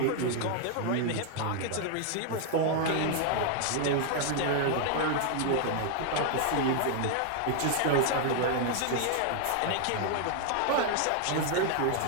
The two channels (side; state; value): both; different; correlation 0.00